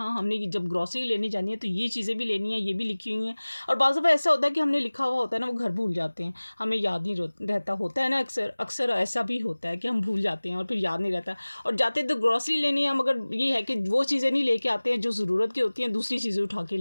हमने ये जब ग्रॉसरी लेने जानी है तो ये चीज़ें भी लेनी है, ये भी लिखी हुई हैं। और बाज़ दफ़ा ऐसा होता है कि हमने लिखा हुआ होता है ना, वो घर भूल जाते हैं, हमें याद नहीं रहता होता है ना, अक्सर अक्सर ऐसा भी होता है कि हम भूल जाते हैं और फिर याद नहीं रहता। और जाते तो ग्रॉसरी लेने हैं, मगर ये है कि वो चीज़ें नहीं लेके आते हैं जो ज़रूरत की होती हैं, दूसरी चीज़ें उठा के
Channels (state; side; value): inverted; both; correlation -1.00